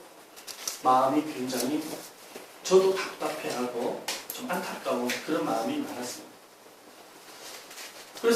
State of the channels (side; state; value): both; identical; correlation 1.00